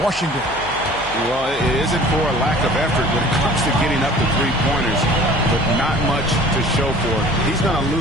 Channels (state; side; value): noise; left; hum, 17 dB below the sound